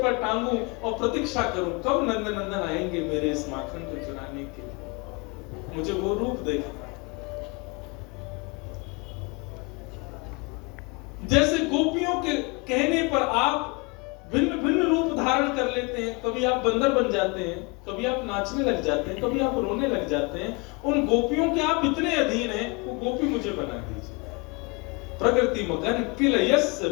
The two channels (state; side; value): quieter; right; 29.4 dB